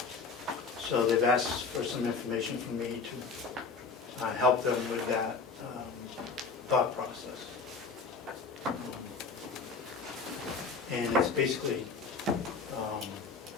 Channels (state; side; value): quieter; right; 4.6 dB